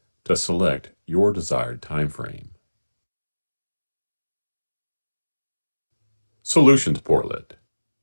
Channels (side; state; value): both; inverted; correlation -1.00